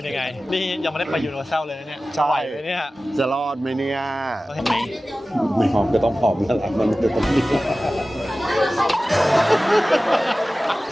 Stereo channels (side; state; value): both; normal; correlation 0.96